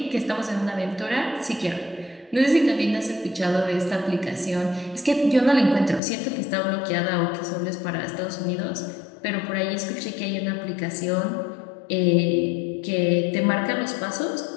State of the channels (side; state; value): right; drops out; at 6.0 s